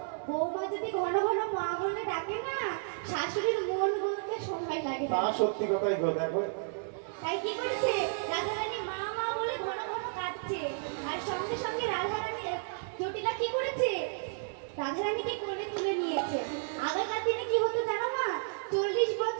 বৌমা যদি ঘন ঘন মা বলে ডাকে না, শাশুড়ির মন বলতে সময় লাগে তা না। সত্যি কথাই গো, দেখো। তাই কি করেছে? রাধারানী মা মা বলে ঘন ঘন কাঁদছে। আর সঙ্গে সঙ্গে রাধারানী জটিলা কি করেছে? রাধারানীকে কোলে তুলে নিয়েছে। আগেকার দিনে কি হতো জানো মা? 40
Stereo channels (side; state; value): left; silent; digital silence